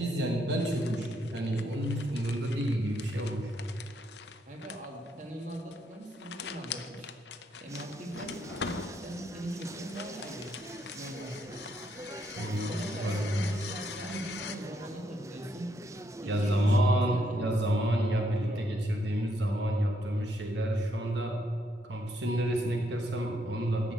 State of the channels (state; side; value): normal; both; correlation 0.75